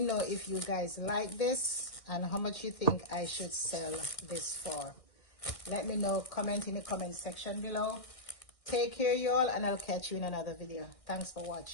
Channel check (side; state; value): right; late; 1.8 ms